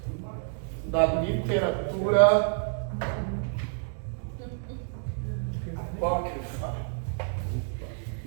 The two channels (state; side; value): silent; left; digital silence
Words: da literatura apócrifa.